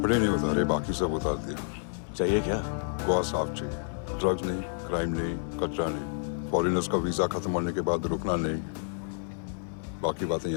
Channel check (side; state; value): right; silent; digital silence